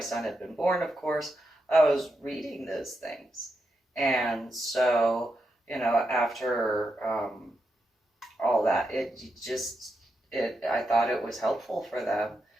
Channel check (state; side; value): normal; both; correlation 0.85